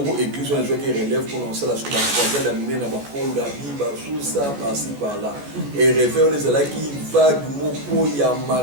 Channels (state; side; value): late; left; 14 ms